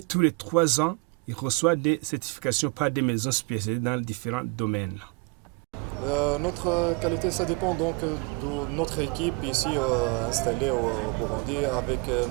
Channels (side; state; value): left; quieter; 29.2 dB